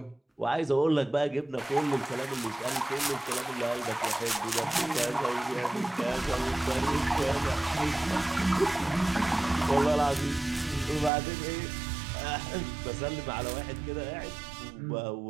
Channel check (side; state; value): left; drops out; at 11.1 s